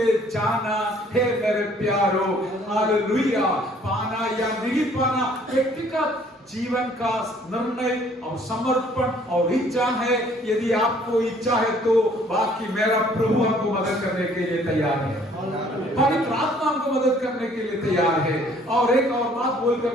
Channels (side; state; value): both; normal; correlation 0.59